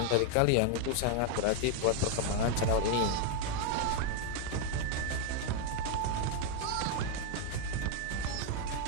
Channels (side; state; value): both; different; correlation 0.01